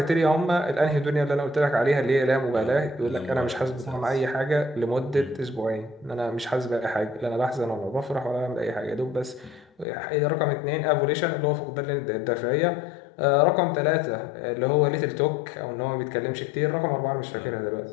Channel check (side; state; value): right; drops out; at 9.9 s